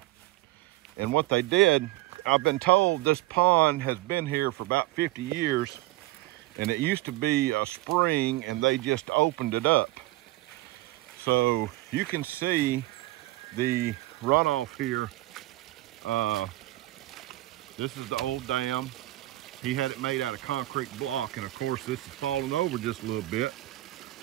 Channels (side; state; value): left; quieter; 18.0 dB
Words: And what they did, I've been told this pond has been here for about 50 years, and it used to be a spring, and they just opened it up. So you can see the runoff here. This is the old dam. He had it made out of concrete block, and of course this is falling over just a little bit.